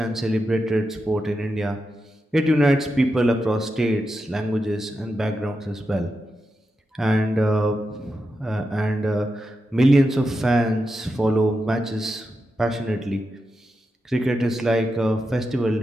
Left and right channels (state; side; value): normal; both; correlation 0.88